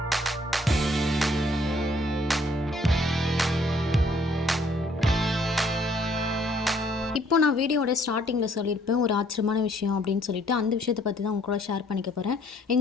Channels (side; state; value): both; normal; correlation 0.63